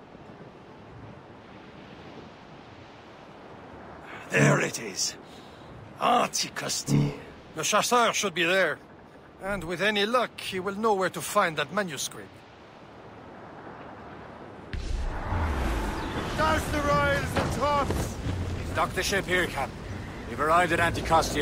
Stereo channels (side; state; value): both; identical; correlation 1.00